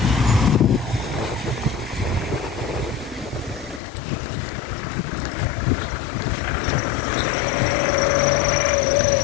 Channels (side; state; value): right; drops out; at 3.8 s